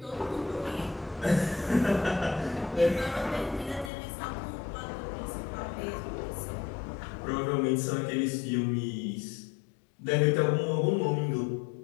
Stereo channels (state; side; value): drops out; right; at 3.9 s